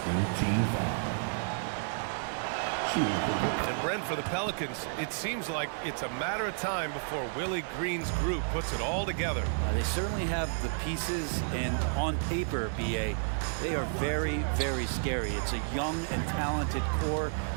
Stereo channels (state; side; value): silent; left; 57 dB below the other